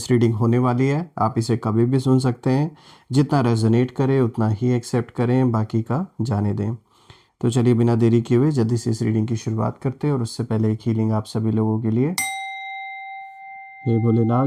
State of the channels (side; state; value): both; identical; correlation 1.00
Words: reading होने वाली है। आप इसे कभी भी सुन सकते हैं। जितना रेजोनेट करे उतना ही एक्सेप्ट करें, बाकी का जाने दें। तो चलिए बिना देरी किए हुए जल्दी से इस रीडिंग की शुरुआत करते हैं। और उससे पहले एक हीलिंग आप सभी लोगों के लिए। हे भोलेनाथ,